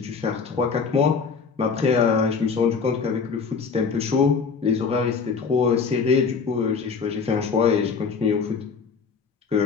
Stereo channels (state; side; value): quieter; right; 5.5 dB